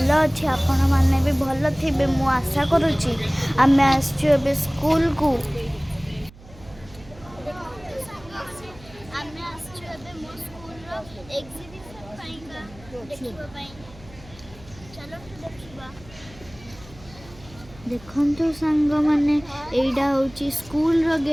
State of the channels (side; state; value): right; noise; hum, 21 dB below the sound